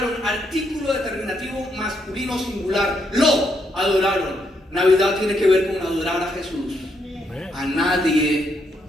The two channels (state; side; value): normal; both; correlation 0.77